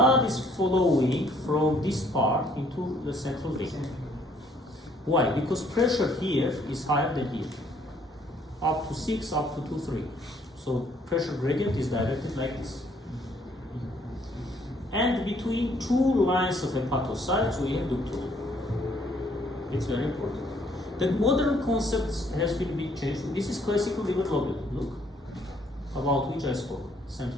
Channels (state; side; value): normal; both; correlation 0.64